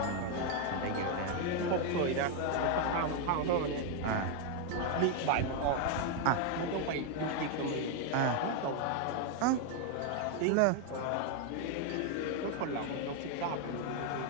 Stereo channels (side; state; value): both; different; correlation 0.01